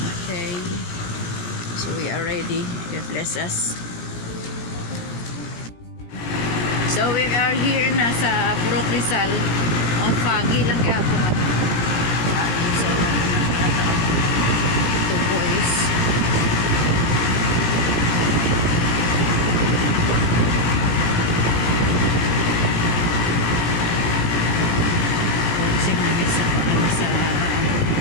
Okay. So we are ready. God bless us. So we are here na sa Purok Rizal. Ang foggy lang kaya po. So, 2 boys.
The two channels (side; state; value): right; late; 17 ms